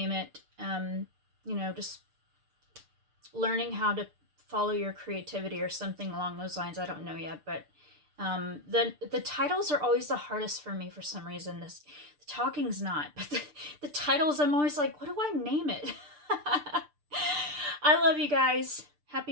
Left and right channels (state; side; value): late; left; 6.7 ms